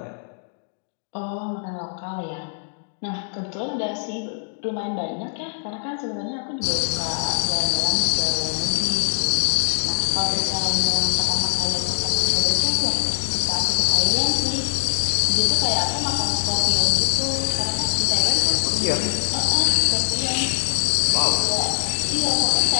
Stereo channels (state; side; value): silent; right; digital silence